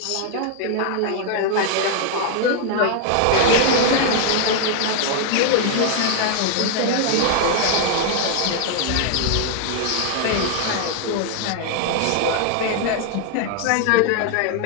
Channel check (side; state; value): both; different; correlation 0.00